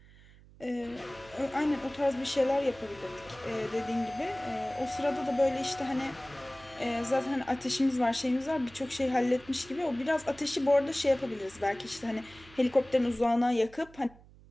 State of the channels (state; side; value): noise; right; hum, 23 dB below the sound